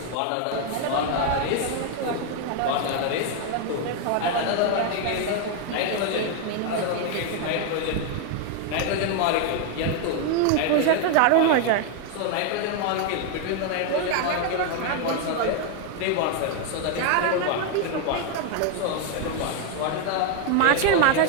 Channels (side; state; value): both; different; correlation 0.00